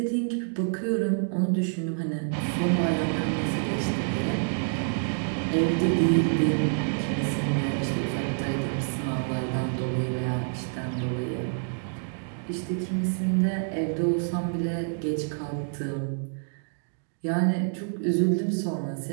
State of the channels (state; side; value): silent; left; digital silence